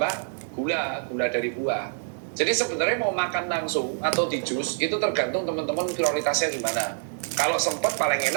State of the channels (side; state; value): left; silent; digital silence